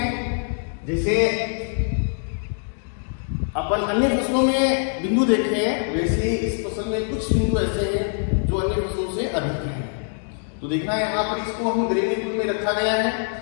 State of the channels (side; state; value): right; silent; digital silence